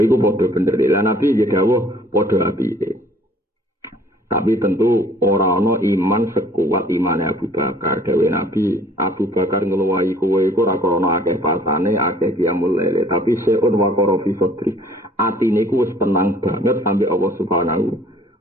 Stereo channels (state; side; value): normal; both; correlation 0.55